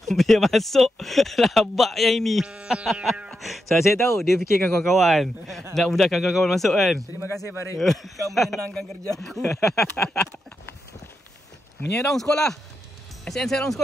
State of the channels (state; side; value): normal; both; correlation 0.85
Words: dia masuk labak yang ini. So, saya tahu dia fikirkan kawan-kawan, nak mudahkan kawan-kawan masuk kan. Terima kasih Farid. Kau menyenangkan kerja aku. Menyerang sekolah. SN Serang